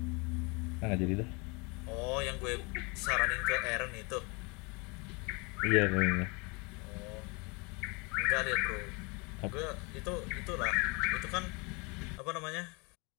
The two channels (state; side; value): quieter; right; 29.2 dB